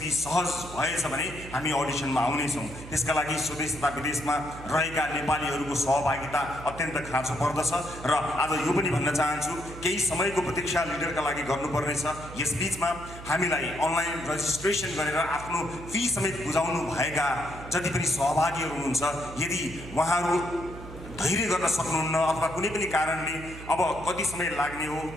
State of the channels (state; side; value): noise; right; hum, 13 dB below the sound